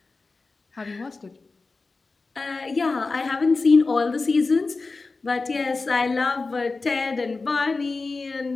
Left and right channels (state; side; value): quieter; right; 3.8 dB